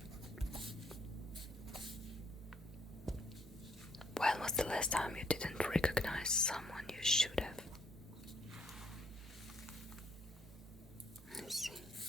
When was the last time you didn't recognize someone you should have? I see.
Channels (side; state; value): both; normal; correlation 0.69